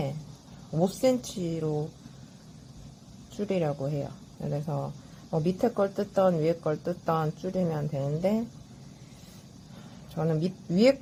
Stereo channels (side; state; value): both; identical; correlation 1.00